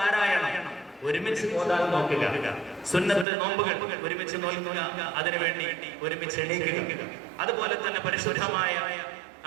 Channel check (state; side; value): drops out; left; at 3.2 s